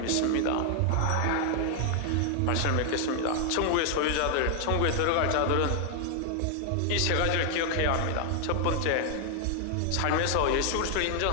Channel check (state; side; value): different; both; correlation 0.00